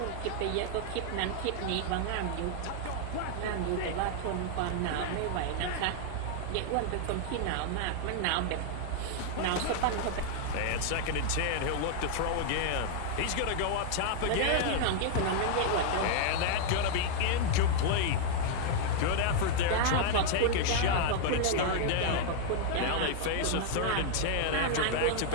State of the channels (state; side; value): different; both; correlation 0.00